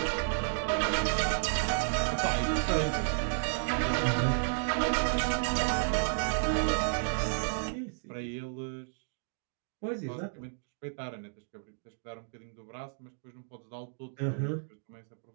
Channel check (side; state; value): left; silent; digital silence